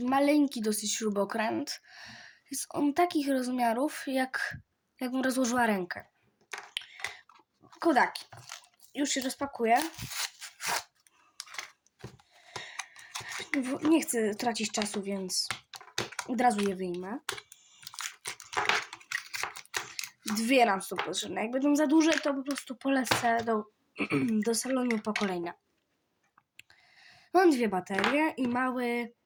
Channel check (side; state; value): both; identical; correlation 1.00